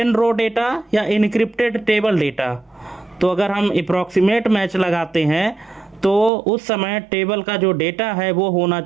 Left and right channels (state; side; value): drops out; left; at 6.3 s